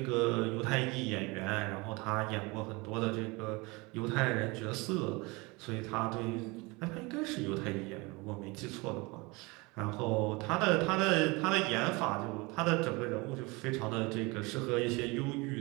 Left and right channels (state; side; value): quieter; left; 25.7 dB